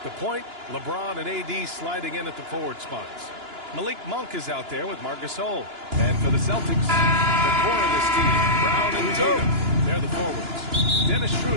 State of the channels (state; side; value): late; left; 2.9 ms